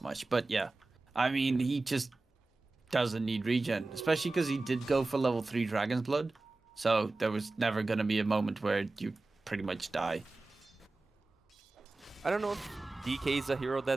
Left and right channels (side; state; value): left; quieter; 3.3 dB